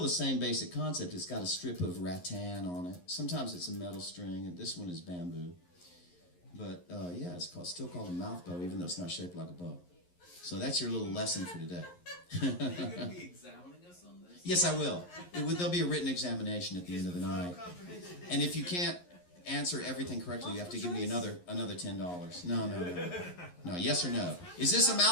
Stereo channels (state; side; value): late; right; 11 ms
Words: the same basic concept. It's got a strip of rattan on it. Sometimes it's a metal string, and this one is bamboo. But it's still called a mouth bow, even though it's not shaped like a bow. So that's your little lesson for today. Are you going to be examining us on this? Yes, I will. There'll be a written examination at the end of the night. And if you can't answer everything correctly, you have to give me another $10. No. No, yes or no? Is this a